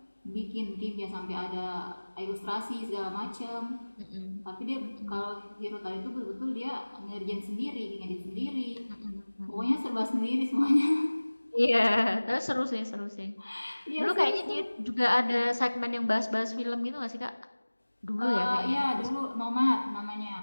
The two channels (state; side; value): inverted; both; correlation -1.00